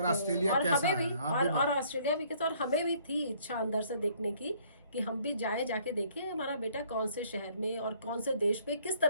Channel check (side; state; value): both; inverted; correlation -0.61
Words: ऑस्ट्रेलिया और कैसा हमें है, भी आप भी और ऑस्ट्रेलिया भी कैसा। और हमें भी थी इच्छा अंदर से देखने की कि हम भी जाके देखें हमारा बेटा कौन से शहर में और कौन से देश में किस